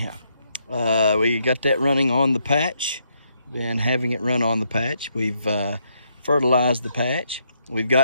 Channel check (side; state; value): both; inverted; correlation -0.76